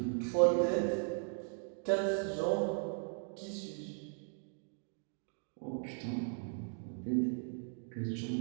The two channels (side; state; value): left; silent; 53 dB below the other